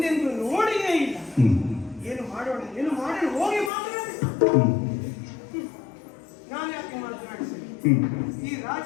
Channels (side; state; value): right; drops out; at 3.7 s